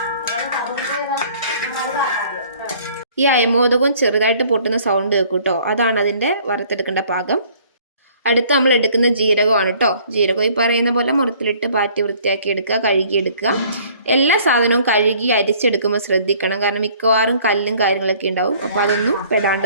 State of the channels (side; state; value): both; inverted; correlation -0.56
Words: ഈ അയമോദകവും ചെറുതായിട്ട് പൊട്ടുന്ന സൗണ്ട് കേൾക്കും കേട്ടോ, അതാണ് അതിൻ്റെ വറുത്തെടുക്കേണ്ട പാകം. അടുത്ത് നമ്മൾ എടുക്കുന്ന ജീരകമാണ് കേട്ടോ. ജീരകം ഈ പറയുന്ന പോലെ മുറത്തിലിട്ട് പാറ്റി വൃത്തിയാക്കി എടുക്കുക, കഴുകിയെടുക്കുക. എല്ലാ സാധനവും കഴുകി അരിച്ചെടുക്കുമ്പോൾ ശ്രദ്ധിക്കണം, കാരണം മിക്കവാറും കല്ലും കാര്യങ്ങളൊക്കെ ഉണ്ടാവും. അപ്പോൾ അതൊന്നും